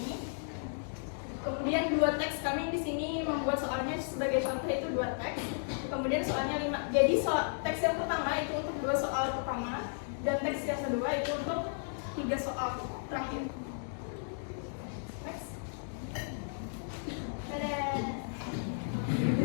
Kemudian 2 teks kami di sini membuat soalnya sebagai contoh itu 2 teks. Kemudian soalnya 5. Jadi teks yang pertama itu untuk 2 soal pertama dan teks yang kedua itu untuk 3 soal terakhir. Next.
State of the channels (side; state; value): right; silent; digital silence